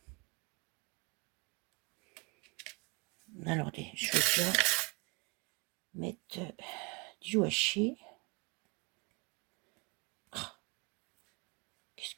Alors, je vais déjà mettre du washi. Oh, qu'est-ce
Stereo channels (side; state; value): left; quieter; 30.1 dB